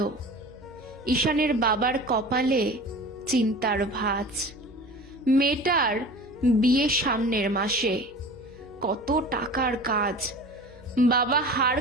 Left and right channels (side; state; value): right; noise; hum, 26 dB below the sound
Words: ঈশানের বাবার কপালে চিন্তার ভাঁজ। মেয়েটার বিয়ে সামনের মাসে, কত টাকার কাজ। বাবা হাড়